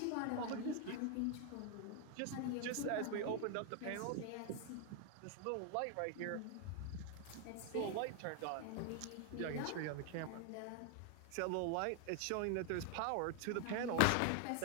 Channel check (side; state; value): both; different; correlation 0.00